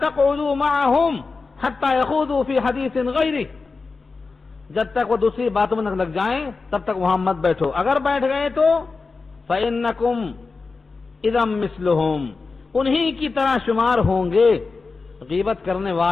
معهم حتى يخوضوا في حديث غيره، جب تک وہ دوسری باتوں میں نہ لگ جائیں تب تک وہاں مت بیٹھو. اگر بیٹھ گئے تو فإنكم اذا مثلهم، انہی کی طرح شمار ہوں گے. غیبت کرنے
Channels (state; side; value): quieter; right; 4.2 dB